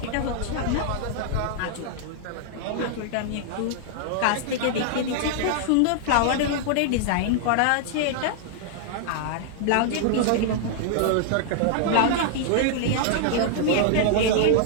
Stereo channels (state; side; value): different; both; correlation -0.01